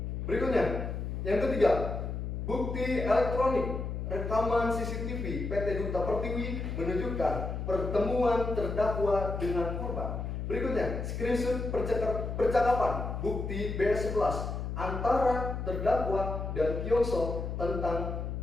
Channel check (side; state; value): left; noise; hum, 4 dB below the sound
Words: Berikutnya, yang ketiga, bukti elektronik rekaman CCTV PT Duta Pertiwi menunjukkan pertemuan terdakwa dengan korban. Berikutnya, screenshot percakapan bukti B11 antara terdakwa dan Kyongso tentang